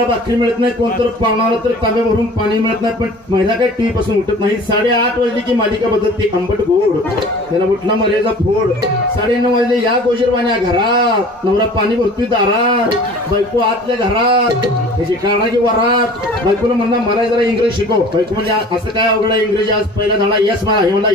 भाकरी मिळत नाही, कोणतर पाहुणाला तर तांब्या भरून पाणी मिळत नाही, पण महिला काय टीव्ही पासून उठत नाही. 8:30 वाजली की मालिका बदलते, आंबट गोड, त्याला उठला मर्यादा फोड. 9:30 वाजले या गोजरवाण्या घरात, नवरा पाणी भरतोय दारात, बायको आतल्या घरात, त्याची काढा की वरात. बायकोला म्हणला मला जरा इंग्रजी शिकव. बायको म्हणजे असं काय अवघड आहे इंग्रजी? आज पहिला धडा यस म्हणा. हे म्हणला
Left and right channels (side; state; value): both; normal; correlation 0.45